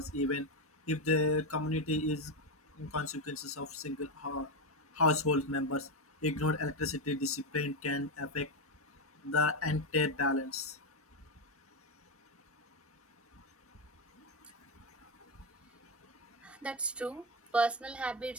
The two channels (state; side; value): normal; both; correlation 0.10